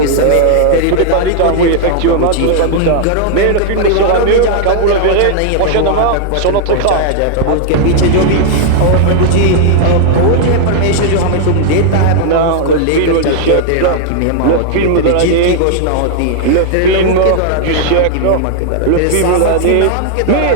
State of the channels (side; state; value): both; different; correlation -0.01